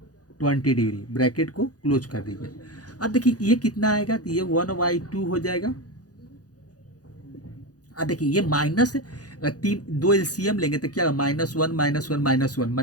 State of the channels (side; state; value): right; late; 0.68 ms